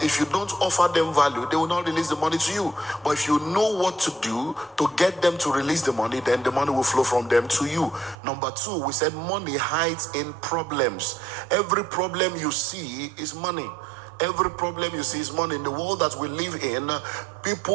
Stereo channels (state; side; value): drops out; left; at 8.2 s